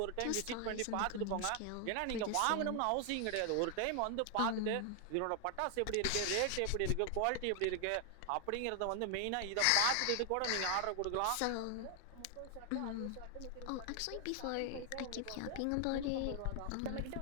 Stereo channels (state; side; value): different; both; correlation 0.00